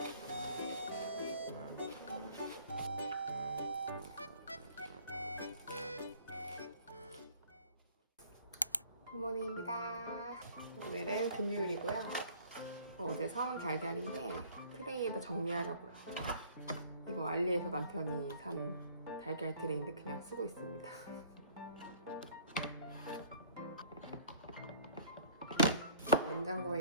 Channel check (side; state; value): both; inverted; correlation -0.53